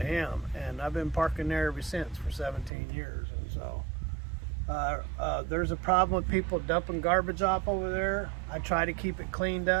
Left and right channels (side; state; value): left; drops out; at 2.7 s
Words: him, and I've been parking there ever since for 17 years. And so there's a problem with people dumping garbage off over there. I try to keep it cleaned